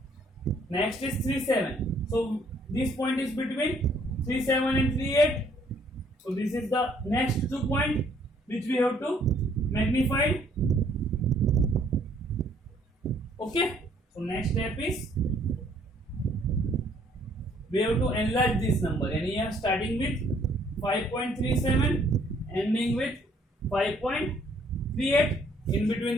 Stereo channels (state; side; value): normal; both; correlation 0.63